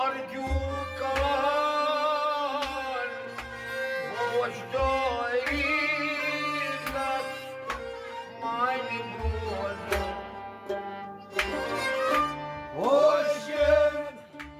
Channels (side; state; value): both; identical; correlation 1.00